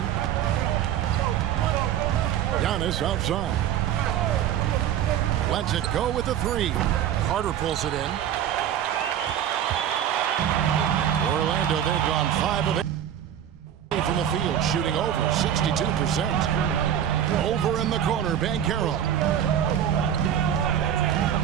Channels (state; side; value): quieter; left; 10.0 dB